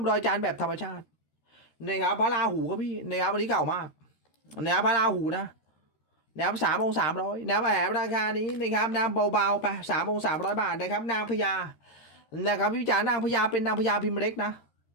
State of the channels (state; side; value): late; right; 13 ms